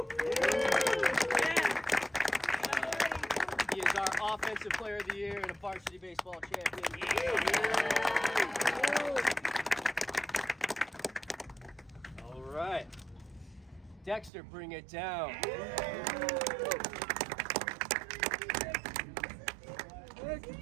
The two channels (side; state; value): left; drops out; at 14.3 s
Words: is our offensive player of the year and a varsity baseball champion. All right. Dexter, bring it down.